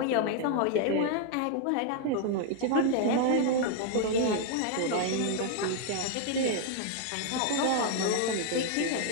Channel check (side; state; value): both; different; correlation 0.00